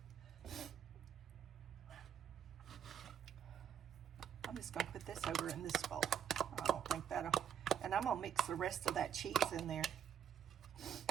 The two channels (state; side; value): quieter; left; 8.6 dB